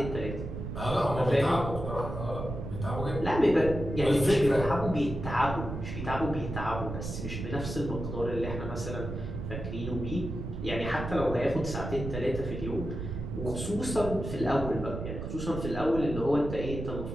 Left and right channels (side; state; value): right; noise; rumble, 6 dB below the sound